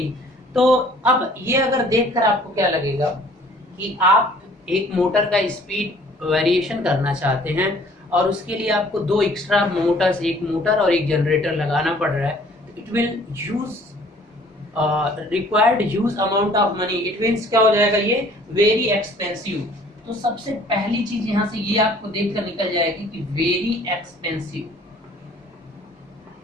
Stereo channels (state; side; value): normal; both; correlation 0.54